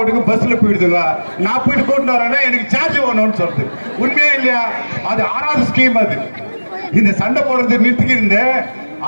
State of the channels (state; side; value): inverted; both; correlation -1.00